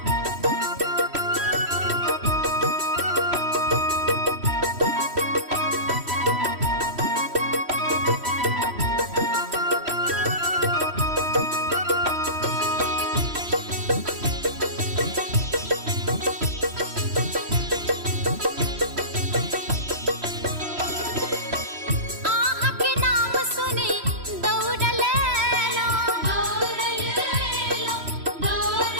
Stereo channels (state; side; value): late; left; 3.1 ms